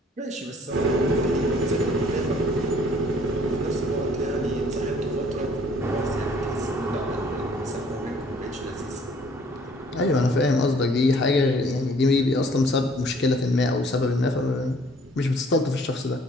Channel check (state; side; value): normal; both; correlation 0.58